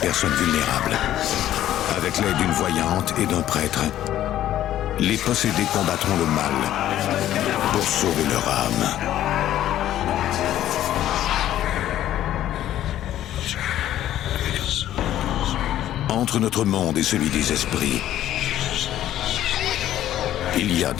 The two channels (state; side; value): quieter; right; 12.5 dB